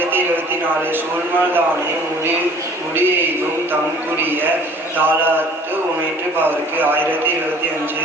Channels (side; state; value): both; normal; correlation 0.51